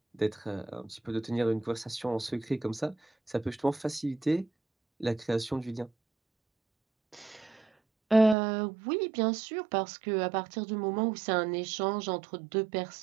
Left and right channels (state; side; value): drops out; left; at 8.3 s